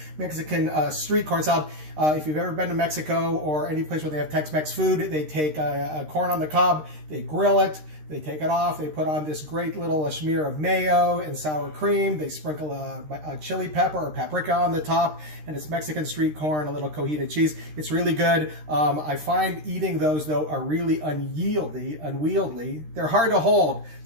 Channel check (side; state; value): left; late; 13 ms